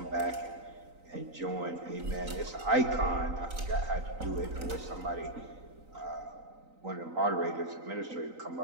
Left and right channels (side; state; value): left; late; 3.9 ms